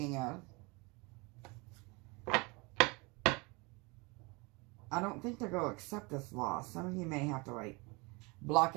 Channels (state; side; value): quieter; left; 27.4 dB